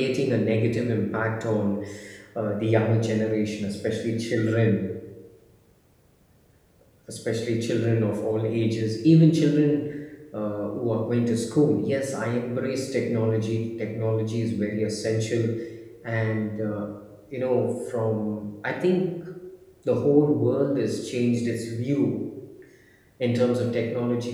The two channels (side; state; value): both; identical; correlation 1.00